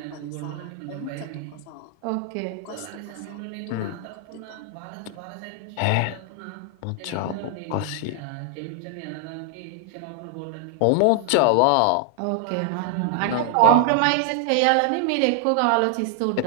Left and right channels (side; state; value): both; different; correlation 0.00